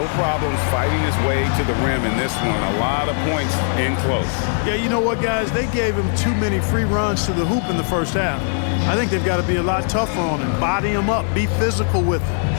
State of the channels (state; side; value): silent; right; digital silence